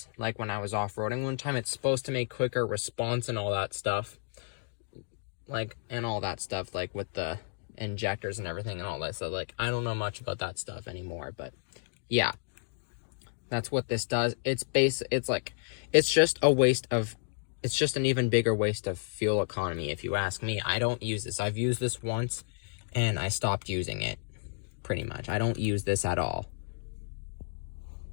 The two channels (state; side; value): silent; right; digital silence